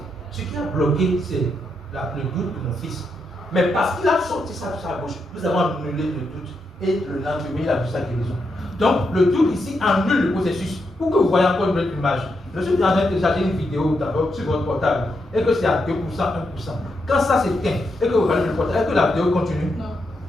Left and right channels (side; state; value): both; normal; correlation 0.82